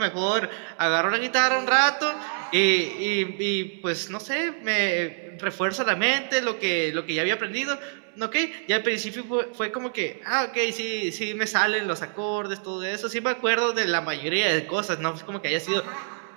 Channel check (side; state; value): left; silent; 61 dB below the other